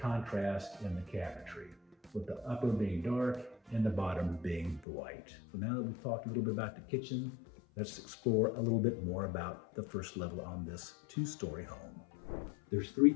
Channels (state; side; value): drops out; right; at 4.9 s